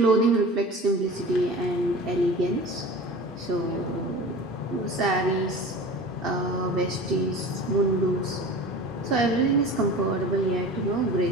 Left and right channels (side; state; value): both; normal; correlation 0.36